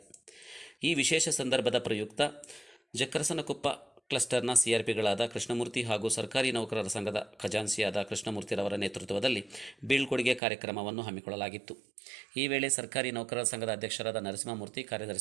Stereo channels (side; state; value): left; drops out; at 10.4 s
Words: ಈ ವಿಶೇಷ ಸಂದರ್ಭದ ಪ್ರಯುಕ್ತ ಜಕ್ಕರಸನಕೊಪ್ಪ ಕ್ಲಸ್ಟರ್ನ ಸಿಆರ್ಪಿಗಳಾದ ಕೃಷ್ಣಮೂರ್ತಿ ಹಾಗೂ ಸರ್ಕಾರಿ ನೌಕರರ ಸಂಘದ ಖಜಾನ್ಸಿಯಾದ ಕೃಷ್ಣಮೂರ್ತಿರವರ ನೇತೃತ್ವದಲ್ಲಿ ಬೀಳ್ಕೊಡುಗೆ ಕಾರ್ಯಕ್ರಮವನ್ನು ಹಮ್ಮಿಕೊಳ್ಳಲಾಗಿತ್ತು. ಈ ವೇಳೆ ಸರ್ಕಾರಿ ನೌಕರರ ಸಂಘದ ಅಧ್ಯಕ್ಷರಾದ ನರಸಿಂಹಮೂರ್ತಿ,